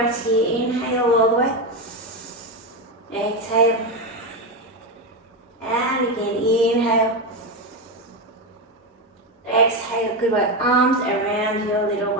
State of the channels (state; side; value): normal; both; correlation 0.12